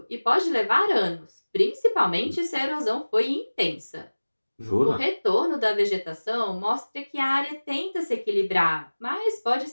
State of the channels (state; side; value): inverted; both; correlation -1.00